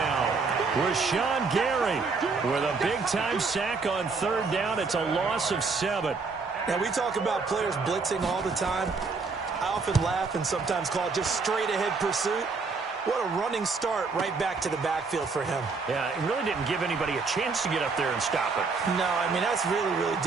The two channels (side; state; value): left; quieter; 4.4 dB